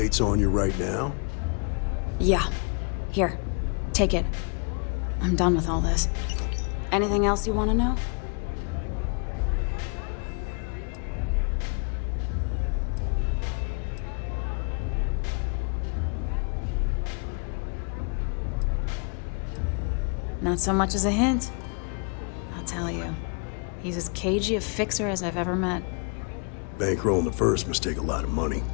on you right now? Yeah. Here. Take it. I'm done with all this. Anything else you want to know? Not so much as a hint. I'll tell you. He's as cagey a fixer as I've ever met. Bankrolling the First must take a lot of money.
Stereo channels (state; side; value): quieter; right; 38.1 dB